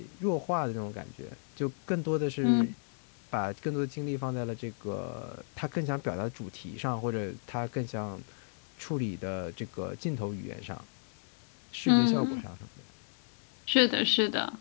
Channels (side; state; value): right; silent; digital silence